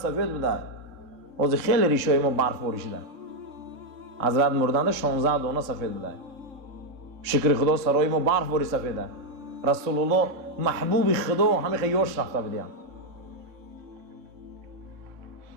بوده. از خیلی ریشای ما برف بریشیده. حضرت مردند 16 دانه سفید بوده. شکر خدا سرای ما برف بری سفیده. رسول الله محبوب خدا همه خیاش رفته بودیم.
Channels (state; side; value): late; left; 3.6 ms